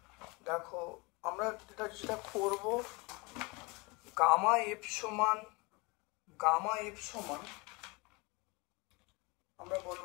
দেখো আমরা যেটা করব, গামা এফ সমান আমরা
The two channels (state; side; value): quieter; right; 26.9 dB